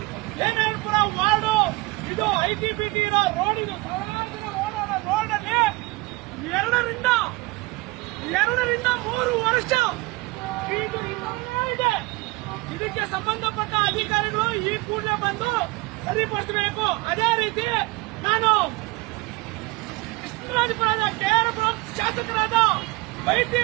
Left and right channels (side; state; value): left; quieter; 23.3 dB